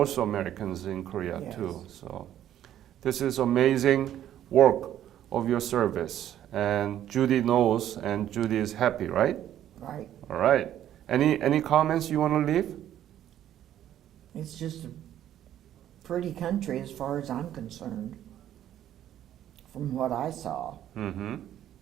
Americans in Korea Yes. too. So this is amazing work of your service. And Judy knows, and Judy is happy, right? Right. All right. Any comments you want to leave? It's just a pretty country as far as I'm concerned, from what I saw. Mm-hmm.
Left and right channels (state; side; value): quieter; left; 11.5 dB